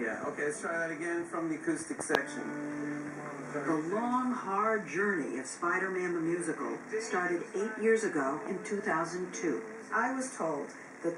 Yeah, okay, let's try that again from the acoustic section. The long, hard journey of Spider-Man the Musical started 8 years ago in 2002. I was told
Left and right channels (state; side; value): identical; both; correlation 1.00